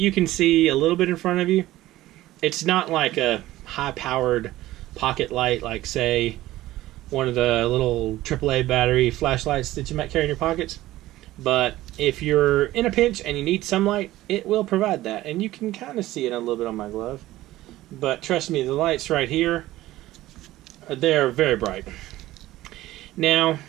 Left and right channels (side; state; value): left; quieter; 16.1 dB